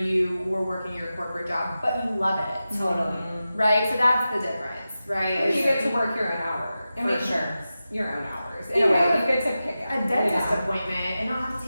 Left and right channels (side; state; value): both; inverted; correlation -0.93